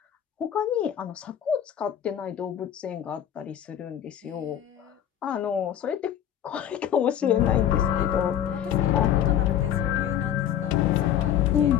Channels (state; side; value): quieter; right; 10.3 dB